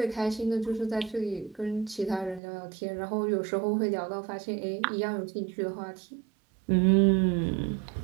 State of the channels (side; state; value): left; drops out; at 2.4 s